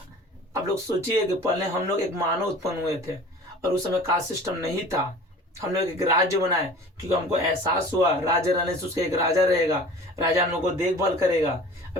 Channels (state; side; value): normal; both; correlation 0.43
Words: आप लोग सोचिए कि पहले हम लोग एक मानव उत्पन्न हुए थे, और उस समय कास्ट सिस्टम नहीं था। हम लोग एक राज्य बनाए क्योंकि हमको एहसास हुआ राज्य रहने से उसका एक राजा रहेगा, राजा हम लोग को देखभाल करेगा।